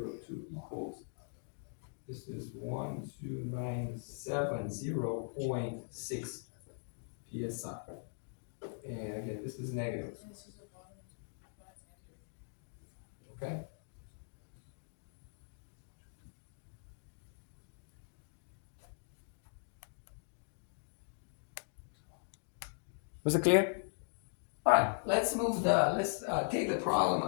equals, this is 12970.6 PSI. And again, this is negative. Okay? Was it clear? All right, let's take the problem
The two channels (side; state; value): right; silent; digital silence